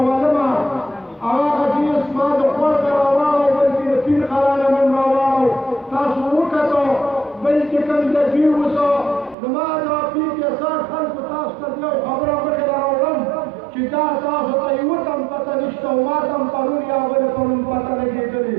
معلومه هغه حدیث ما د خور ته راواړو بلکې د پیر قرانه من راواړو تاسو وکتو بلکې کوم د دوی اوسه زما دا پیر کې سر خلکو تاسو ته یو خبره مخکې راوړم چې دا تاسو ته یوه تم پته نشته او ما ته هم پرون یا بلې پرون پته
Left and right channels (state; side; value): drops out; left; at 9.3 s